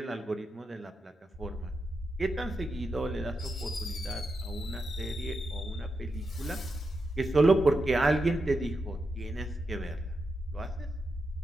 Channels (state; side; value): normal; both; correlation 0.86